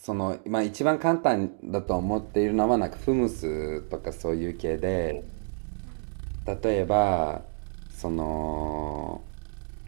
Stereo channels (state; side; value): silent; left; digital silence